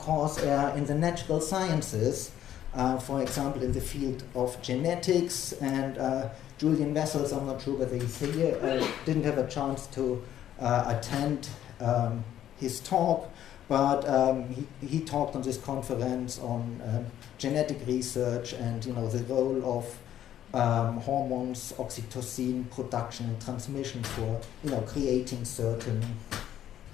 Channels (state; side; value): quieter; right; 11.3 dB